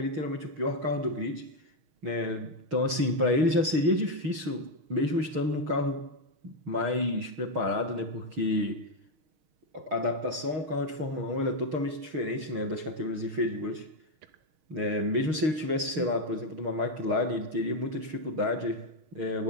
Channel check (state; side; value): late; left; 6.4 ms